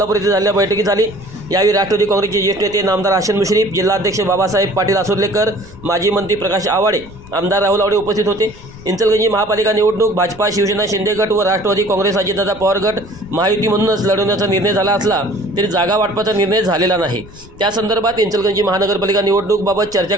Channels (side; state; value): left; noise; rumble, 20 dB below the sound